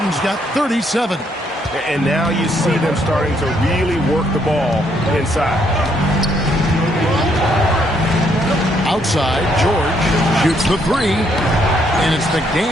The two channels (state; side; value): normal; both; correlation 0.71